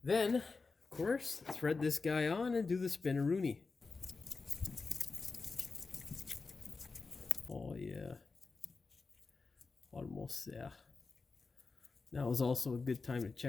Then, of course, thread this guy on and do the spinaroonie. Oh yeah, almost there. Now is also a good time to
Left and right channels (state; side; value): quieter; right; 4.2 dB